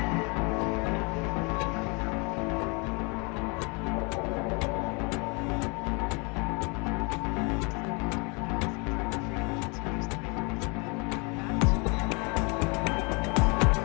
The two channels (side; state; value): right; quieter; 30.8 dB